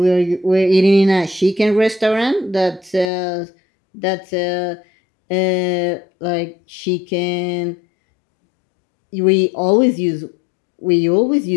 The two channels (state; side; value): drops out; right; at 3.1 s